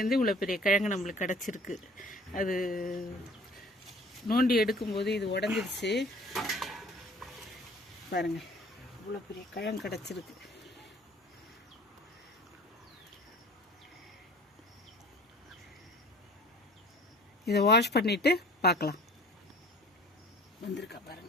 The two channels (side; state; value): both; normal; correlation 0.49